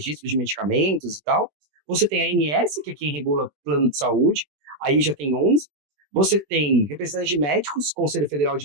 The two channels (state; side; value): late; left; 21 ms